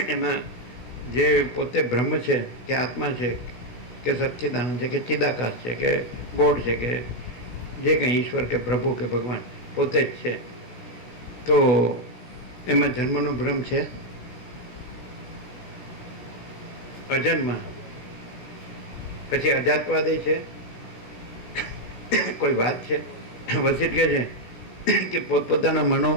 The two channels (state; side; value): late; right; 17 ms